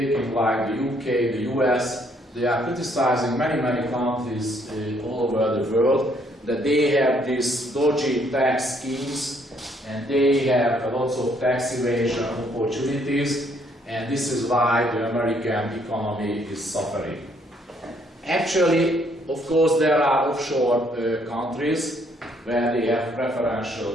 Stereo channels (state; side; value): normal; both; correlation 0.68